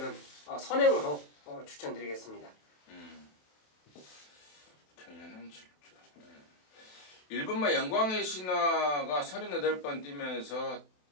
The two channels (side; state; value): right; late; 27 ms